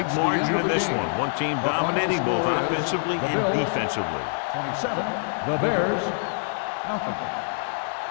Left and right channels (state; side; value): silent; right; digital silence